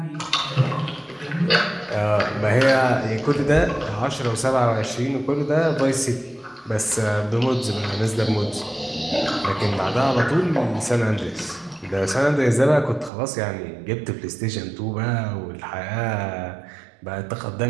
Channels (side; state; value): left; drops out; at 13.1 s